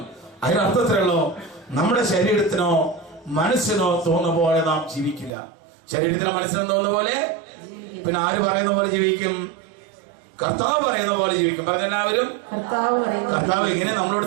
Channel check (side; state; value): left; drops out; at 5.3 s